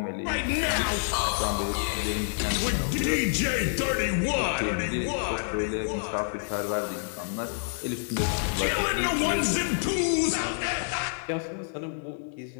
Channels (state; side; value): silent; right; 59 dB below the other